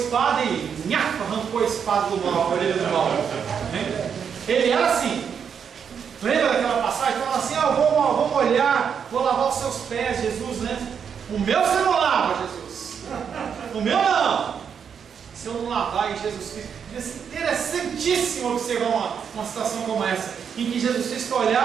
e arrancou a espada do mal, a orelha do mal. Ele era assim. Lembra daquela passagem? Falava assim: vou molhar, vou lavar os seus pés, Jesus, né? O meu você não lava, Jesus. O meu não. Se eu não lavar em Jesus Cristo. Devia ser interessantíssimo observar uma situação como essa, em que Jesus Cristo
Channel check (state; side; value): quieter; left; 7.2 dB